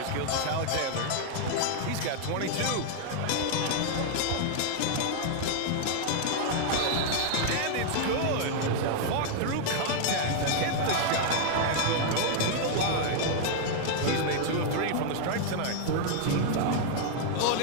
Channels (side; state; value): both; different; correlation 0.00